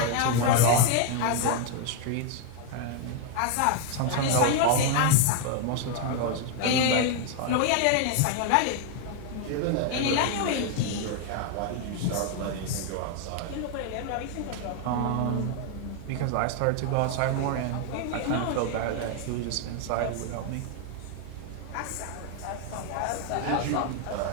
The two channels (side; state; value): both; different; correlation 0.00